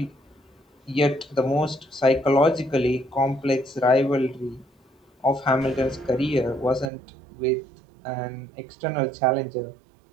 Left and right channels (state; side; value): drops out; left; at 6.9 s